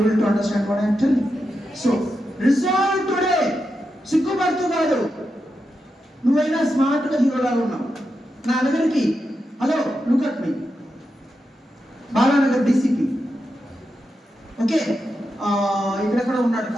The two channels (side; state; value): both; normal; correlation 0.87